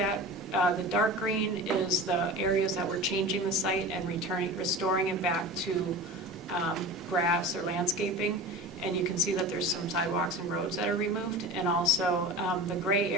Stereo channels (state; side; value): normal; both; correlation 0.33